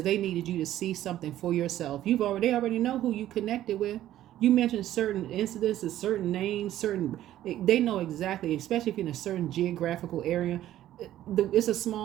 they needed you to see something for yourself. They already know who you connected with. You mentioned certain incidences, certain names, they know exactly, especially if you're in a certain geographical area. It's a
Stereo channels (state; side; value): quieter; left; 13.0 dB